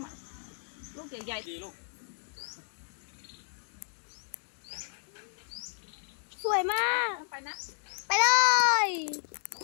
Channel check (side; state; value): right; silent; 56 dB below the other